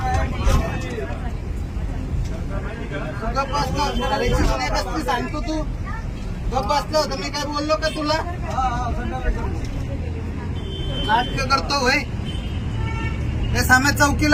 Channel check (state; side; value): identical; both; correlation 1.00